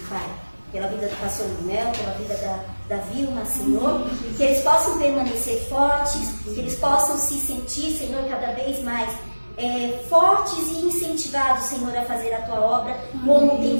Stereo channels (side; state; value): both; inverted; correlation -1.00